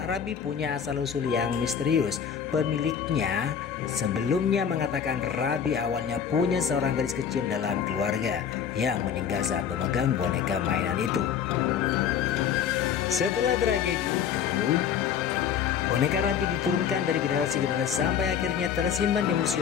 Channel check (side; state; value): right; quieter; 8.0 dB